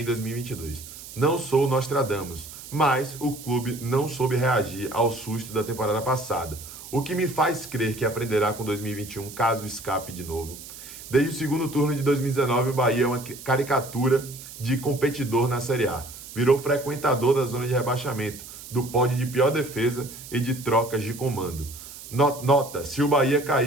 2022. Não sou Nostradamus, mas o clube não soube reagir ao susto da temporada passada, o que me faz crer que aprenderá com 2021 caso escape de novo. Desde o segundo turno de 2019, o Bahia é uma caricatura de competidor na Série A. Virou frequentador da zona de rebaixamento, do pódio de pior defesa e de trocas de comando. Nota, se o Bahia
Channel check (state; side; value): noise; right; hiss, 14 dB below the sound